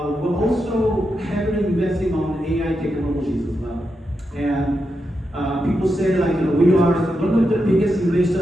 also heavily investing on AI technologies as well. And people say we are one of the biggest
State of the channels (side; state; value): both; normal; correlation 0.86